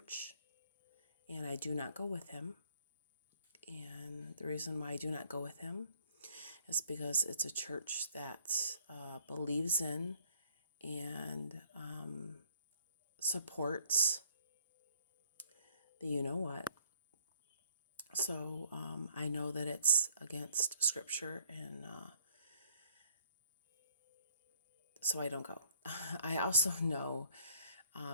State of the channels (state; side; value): inverted; both; correlation -0.61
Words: and I do not go with him. And the reason why I do not go with him is because it's a church that believes in and supports the you know what. So I know that it's against scripture, and so I don't go. I also know